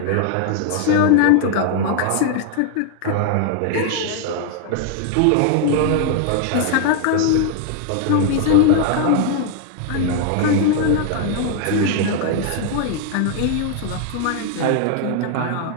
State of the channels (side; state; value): both; different; correlation 0.00